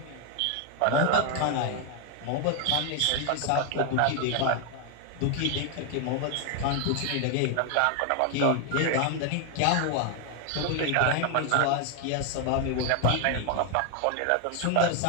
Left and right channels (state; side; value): different; both; correlation 0.01